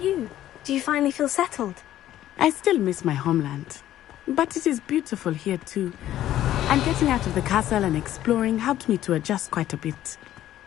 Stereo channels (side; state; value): right; quieter; 12.8 dB